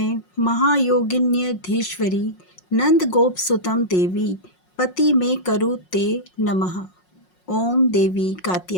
महायोगिन्यधीश्वरी नंद गोप सुतम देवी पति में करु ते नमः। ओम देवी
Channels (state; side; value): late; right; 5.5 ms